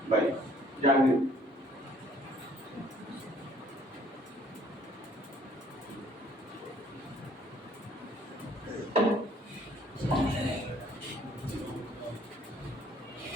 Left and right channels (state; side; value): normal; both; correlation 0.59